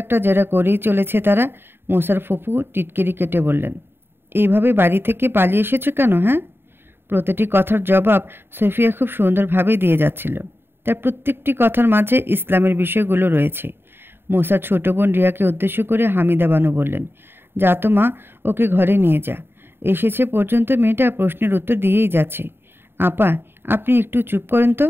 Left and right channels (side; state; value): left; late; 0.11 ms